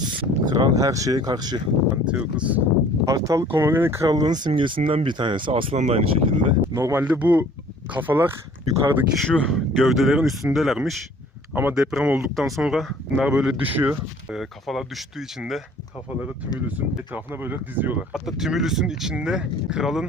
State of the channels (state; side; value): normal; both; correlation 0.52